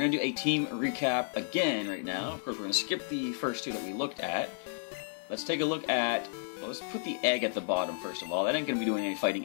to do a team recap again right now. Of course, we're going to skip the first two that we looked at. Let's take a look at... Well, let's put the egg at the bottom first of all. That ain't going to be doing any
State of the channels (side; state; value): right; silent; digital silence